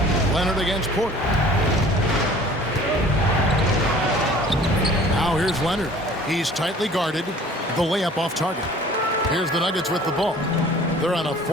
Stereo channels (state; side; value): normal; both; correlation 0.49